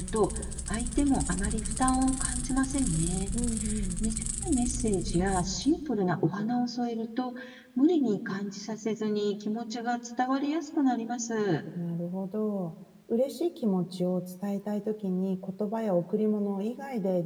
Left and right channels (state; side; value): identical; both; correlation 1.00